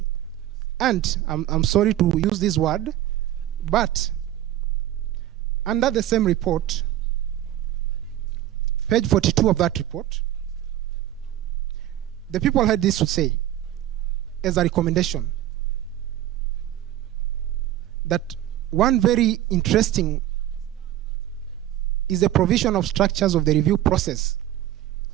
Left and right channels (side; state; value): left; quieter; 13.0 dB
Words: And I'm sorry to use this word, but under the same report, page 42 of that report, the people had this to say as a recommendation, that one very interesting is the provision of structures of the review process